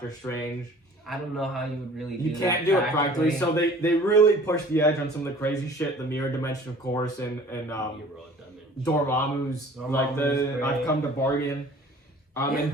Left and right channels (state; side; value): normal; both; correlation 0.48